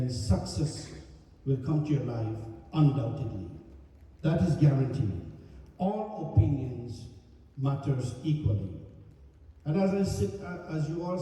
success will come to your life undoubtedly. That is guaranteed. All opinions matters equally. And as you all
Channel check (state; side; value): identical; both; correlation 1.00